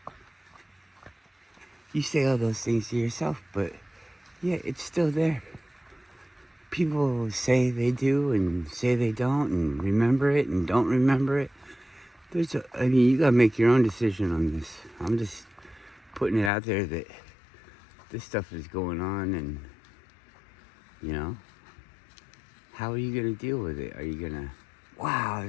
you say all those things to yourself, but yeah, it's still there. People say they do and say they don't, and remember it and don't remember it. I mean, you gotta make your own decision on this. I'm just putting it out there that this stuff is going on, and, you know, how are you gonna deal with it? Are you gonna, wow,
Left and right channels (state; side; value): drops out; right; at 16.5 s